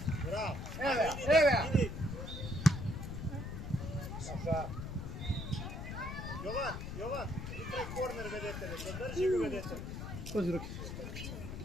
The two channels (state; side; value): noise; left; rumble, 6 dB below the sound